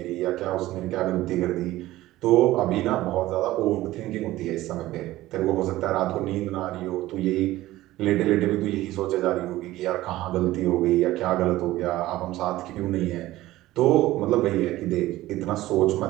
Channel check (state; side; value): quieter; left; 16.4 dB